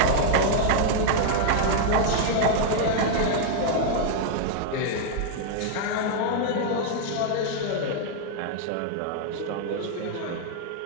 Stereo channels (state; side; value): different; both; correlation -0.01